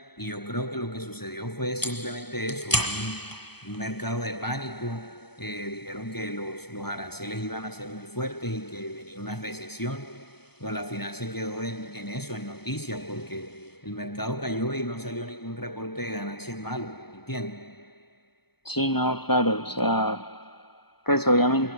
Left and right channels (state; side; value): late; right; 0.97 ms